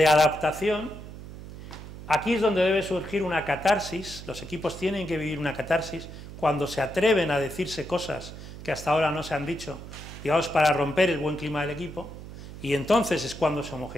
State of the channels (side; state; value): right; noise; hum, 13 dB below the sound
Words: adaptación. Aquí es donde debe surgir una catarsis, los equipos tienen que vivir una catarsis cuando se atreven a decirse cosas que hasta ahora no se han dicho, digamos, para romper el buen clima del equipo, y entonces es cuando se